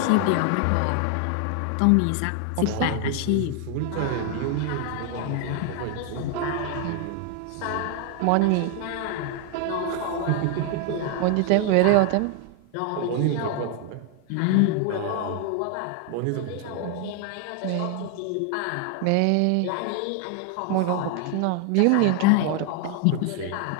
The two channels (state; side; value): different; both; correlation 0.00